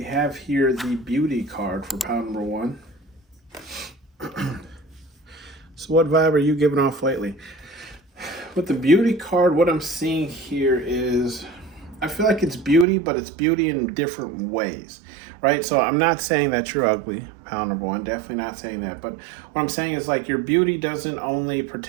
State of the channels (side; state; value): left; drops out; at 12.9 s